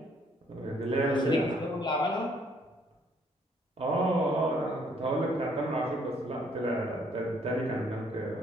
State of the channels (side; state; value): both; normal; correlation 0.65